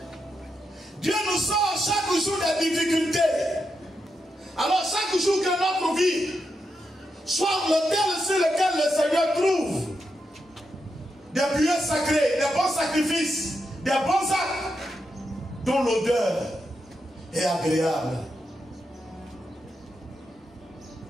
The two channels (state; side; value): normal; both; correlation 0.85